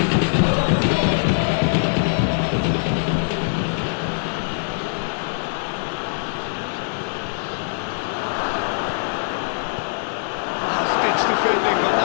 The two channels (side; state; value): right; silent; 64 dB below the other